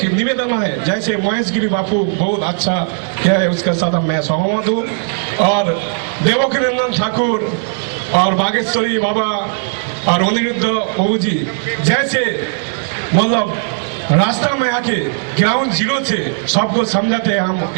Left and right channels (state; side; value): silent; left; digital silence